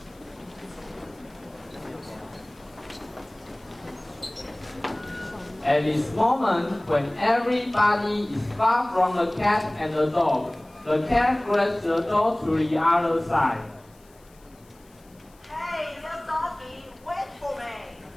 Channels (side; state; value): left; noise; hiss, 30 dB below the sound